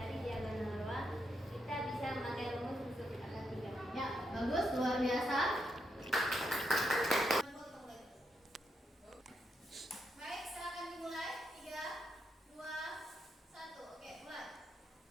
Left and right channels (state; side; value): normal; both; correlation 0.81